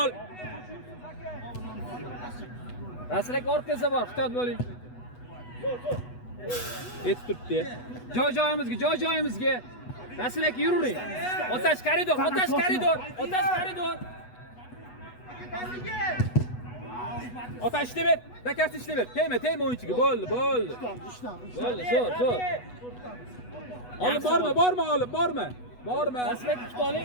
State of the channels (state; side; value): late; right; 8.1 ms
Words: Rasul aka orqangizda bor, ehtiyot bo'ling. Yetib turibdi. Joy-joyimizga. Rasul aka yuring. Otash koridor. Otash ishlayver. Dakasi ishlayver. Tegma o'yinchiga. Bo'ldi. Bo'ldi, zo'r. Olib borma. Rasul aka kutib